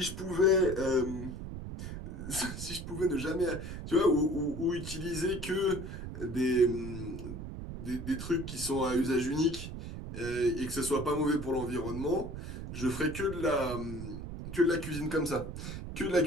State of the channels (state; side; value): noise; right; rumble, 8 dB below the sound